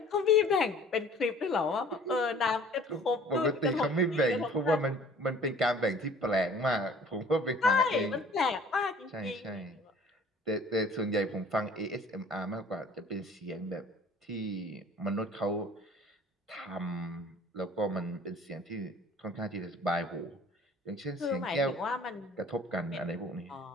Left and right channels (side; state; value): both; normal; correlation 0.50